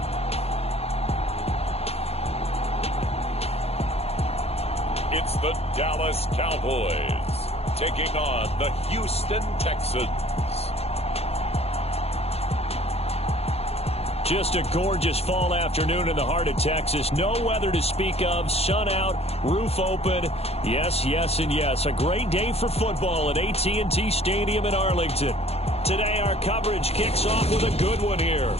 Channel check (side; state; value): right; late; 0.29 ms